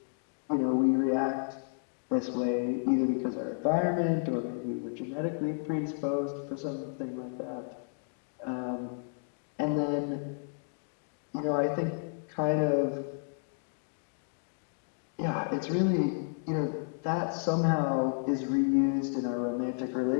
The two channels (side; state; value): right; silent; digital silence